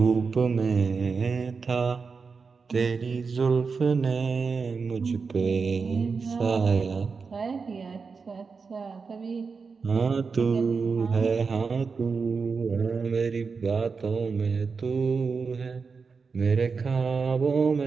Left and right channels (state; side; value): quieter; left; 5.0 dB